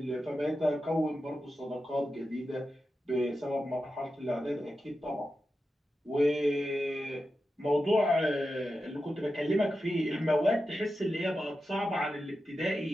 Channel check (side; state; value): both; normal; correlation 0.91